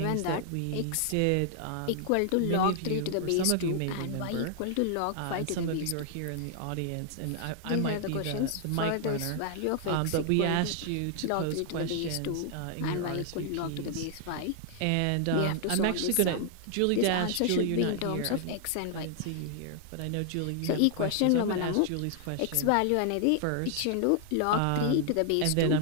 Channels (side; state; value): both; different; correlation 0.00